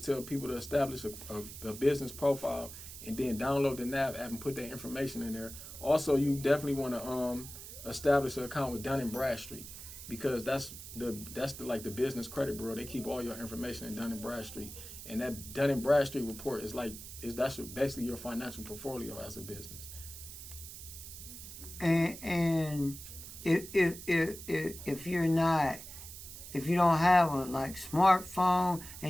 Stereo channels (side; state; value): right; noise; hiss, 12 dB below the sound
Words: tell people to establish a business profile and then download the NAV app and put that information in there. Also, you definitely want to establish an account with Dun & Bradstreet, because that's the the business credit bureau. They keep all your information in Dun & Bradstreet, and that Dun & Bradstreet report that's basically your financial portfolio as a business. And if you don't have a smartphone